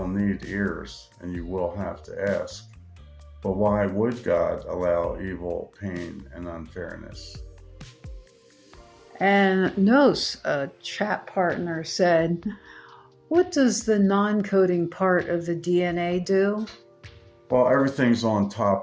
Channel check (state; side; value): identical; both; correlation 1.00